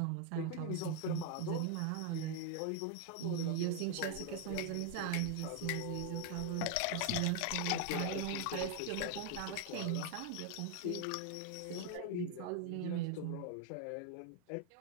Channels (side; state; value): both; different; correlation 0.00